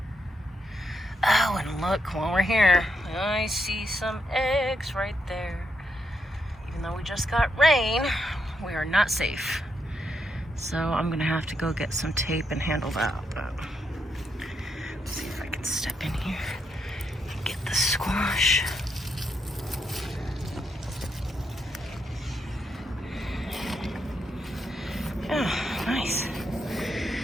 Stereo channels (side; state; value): both; normal; correlation 0.80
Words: Oh, and look, while we're here, I see some eggs right there. Even though we just got rain, we are not safe. So I'm gonna have to go get some tape and handle that. But let's see if I can step in here and get the squash. Yeah, nice.